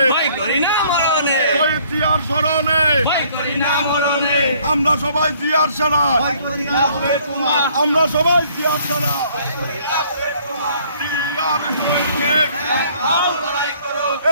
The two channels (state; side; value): inverted; both; correlation -0.61